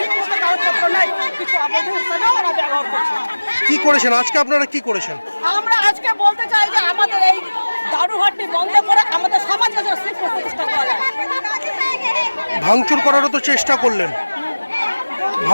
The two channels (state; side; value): inverted; both; correlation -1.00